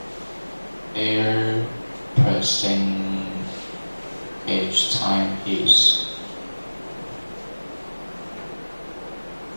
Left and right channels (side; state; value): both; inverted; correlation -1.00